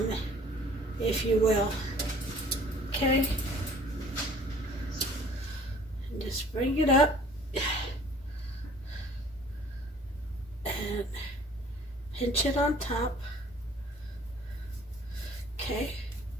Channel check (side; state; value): both; normal; correlation 0.52